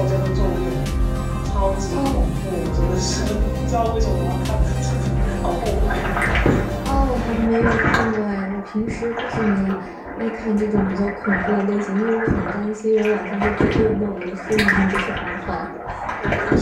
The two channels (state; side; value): identical; both; correlation 1.00